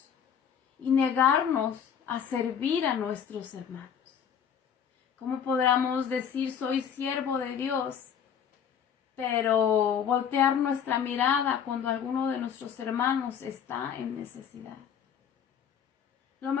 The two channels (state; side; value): quieter; right; 8.0 dB